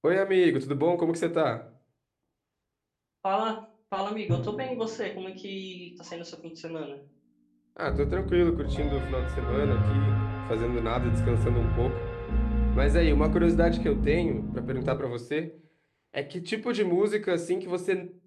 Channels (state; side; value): identical; both; correlation 1.00